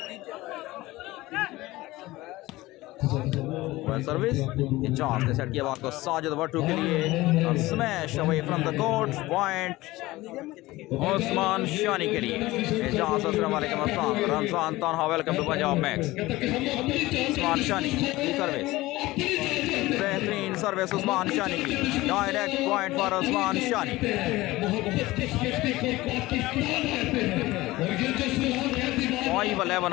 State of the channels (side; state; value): right; quieter; 18.8 dB